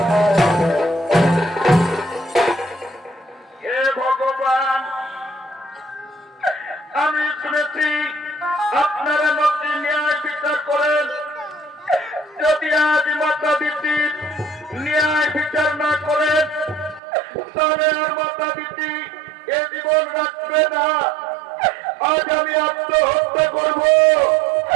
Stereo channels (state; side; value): drops out; left; at 17.0 s